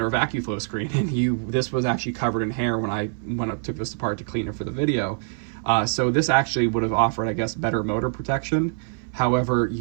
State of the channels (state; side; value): silent; left; 60 dB below the other